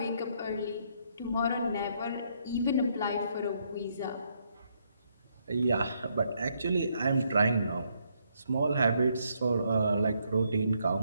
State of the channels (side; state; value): both; inverted; correlation -0.73